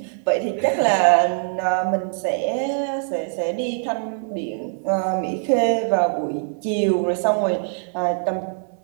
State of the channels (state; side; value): silent; left; digital silence